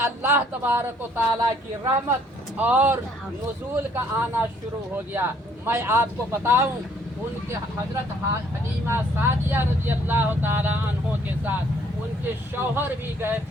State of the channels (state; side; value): normal; both; correlation 0.63